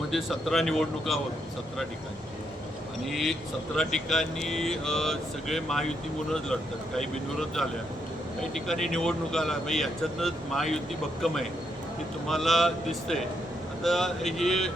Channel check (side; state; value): both; normal; correlation 0.78